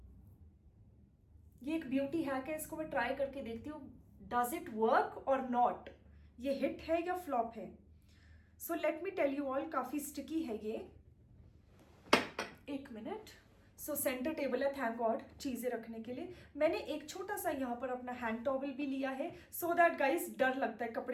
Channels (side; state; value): both; identical; correlation 1.00